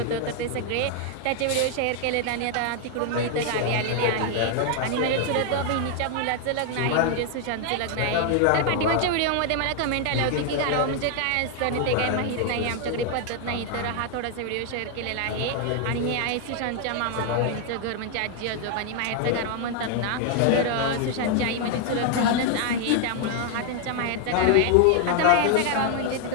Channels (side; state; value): both; different; correlation 0.00